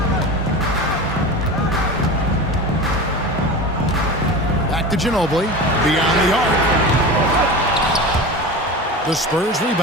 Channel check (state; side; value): normal; both; correlation 0.29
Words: Back to Ginobili. Beyond the arc. The Spurs